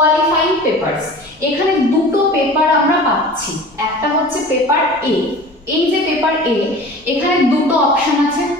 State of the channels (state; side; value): normal; both; correlation 0.40